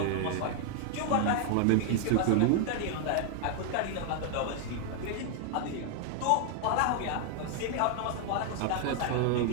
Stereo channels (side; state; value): both; different; correlation 0.00